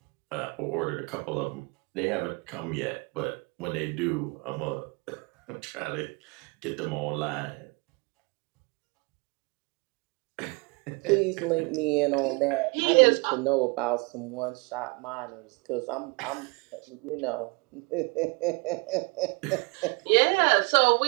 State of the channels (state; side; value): quieter; left; 29.6 dB